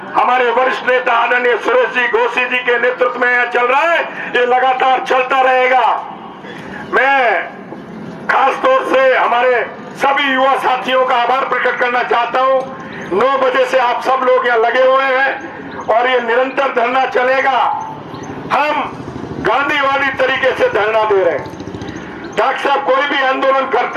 हमारे वरिष्ठ नेता आदरणीय सुरेश जी घोसी जी के नेतृत्व में चल रहा है, ये लगातार चलता रहेगा। मैं खास तौर से हमारे सभी युवा साथियों का आभार प्रकट करना चाहता हूं। 9 बजे से आप सब लोग यहाँ लगे हुए हैं और ये निरंतर धरना चलेगा। हम गांधीवादी तरीके से धरना दे रहे हैं। डॉक्टर साहब कोई भी आंदोलन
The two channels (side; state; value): both; identical; correlation 1.00